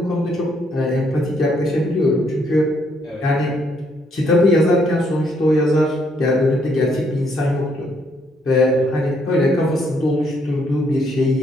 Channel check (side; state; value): both; normal; correlation 0.71